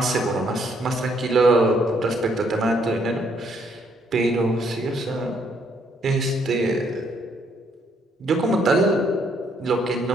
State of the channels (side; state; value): both; normal; correlation 0.70